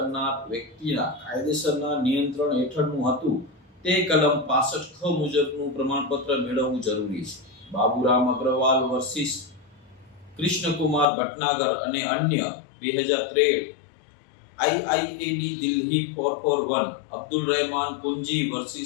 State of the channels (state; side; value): drops out; right; at 11.1 s